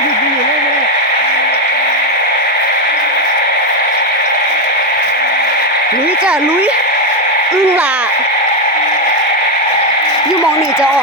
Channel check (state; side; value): normal; both; correlation 0.06